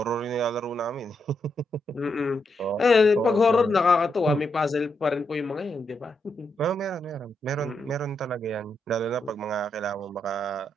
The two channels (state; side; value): normal; both; correlation 0.82